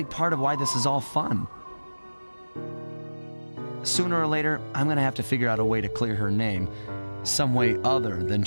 part of why this is all fun. Sooner or later, I'm gonna have to figure out a way to clear her name, some way other than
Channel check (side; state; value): both; inverted; correlation -1.00